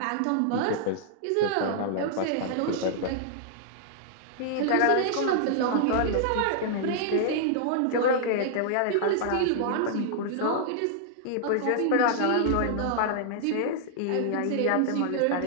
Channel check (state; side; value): different; both; correlation -0.01